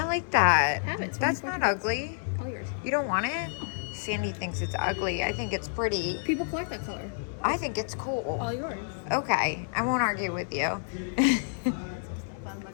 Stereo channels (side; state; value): right; silent; 58 dB below the other